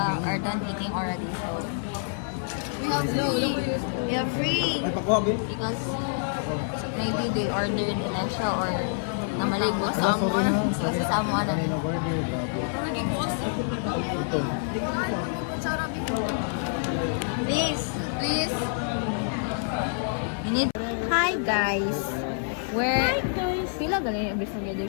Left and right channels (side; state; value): right; silent; 60 dB below the other